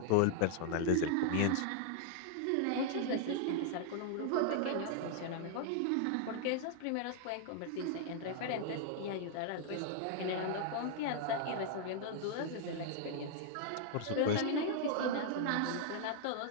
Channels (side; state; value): both; different; correlation -0.01